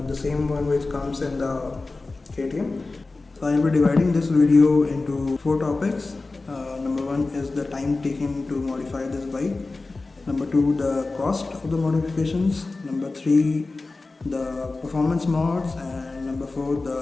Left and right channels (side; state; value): right; quieter; 3.5 dB